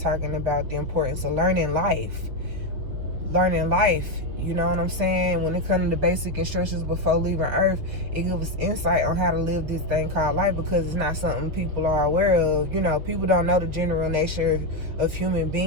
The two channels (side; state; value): left; late; 6.4 ms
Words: about the importance of learning life. You know what I'm saying? When it comes to the basic instructions before leaving Earth, it gives us insight on how to live this thing called life, because it's not something people are aware of. You know, people don't know the general nature of human